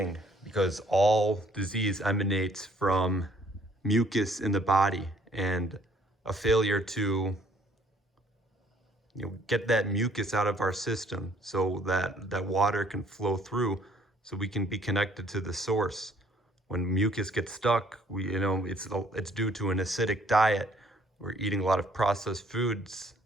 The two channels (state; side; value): normal; both; correlation 0.62